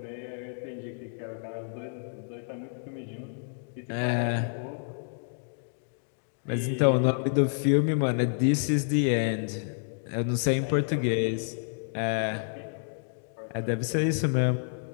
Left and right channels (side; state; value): right; silent; digital silence